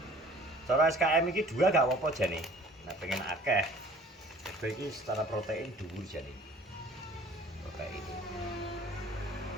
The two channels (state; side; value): normal; both; correlation 0.51